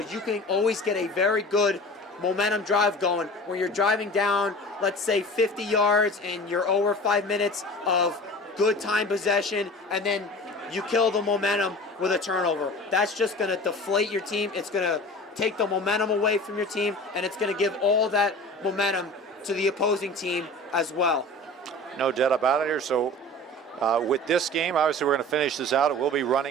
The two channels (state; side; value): normal; both; correlation 0.38